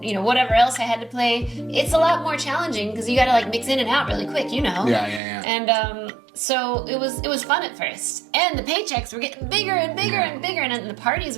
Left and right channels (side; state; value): left; drops out; at 5.2 s